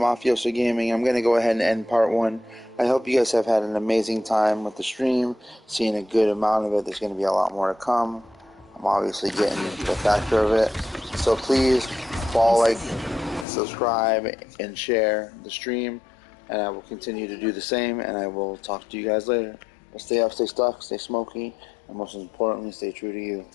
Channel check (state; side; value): drops out; right; at 13.5 s